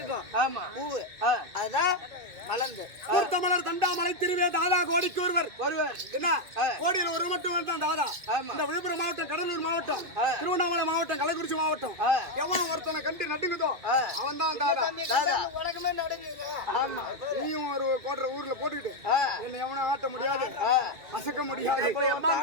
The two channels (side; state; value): left; late; 2.5 ms